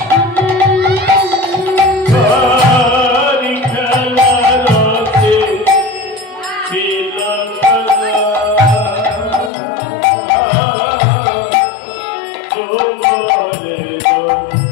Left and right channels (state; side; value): drops out; right; at 9.5 s